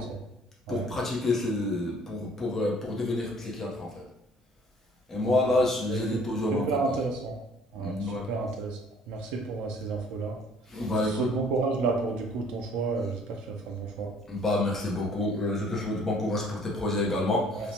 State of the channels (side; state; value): both; normal; correlation 0.56